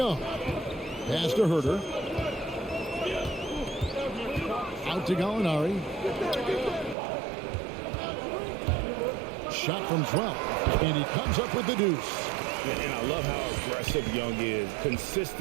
Pass to Herter. Out to Gallinari. Shot from 12. And he comes up with the deuce. And I love how aggressive Young is.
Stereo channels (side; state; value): left; drops out; at 7.0 s